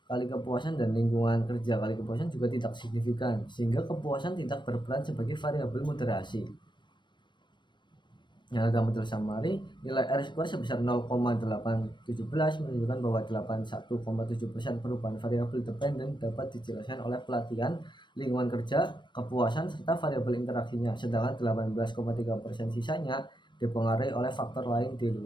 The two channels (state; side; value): late; right; 0.22 ms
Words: kali kepuasan dan lingkungan kerja kali kepuasan juga tidak signifikan, sehingga kepuasan tidak berperan sebagai variabel moderasi. Yang dalam model summary, nilai R2 sebesar 0,817 menunjukkan bahwa 81,7% perubahan variabel dependen dapat dijelaskan oleh pelatihan, lingkungan kerja, kepuasan, serta variabel interaksinya, sedangkan 18,3% sisanya dipengaruhi oleh faktor lain di